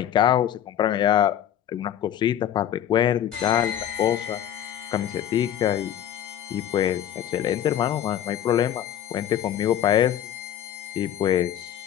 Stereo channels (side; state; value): right; quieter; 10.7 dB